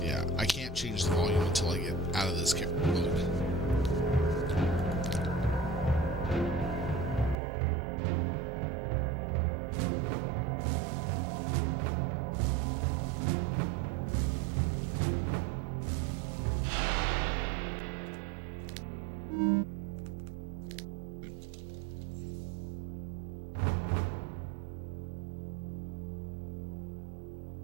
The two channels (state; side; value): drops out; left; at 7.4 s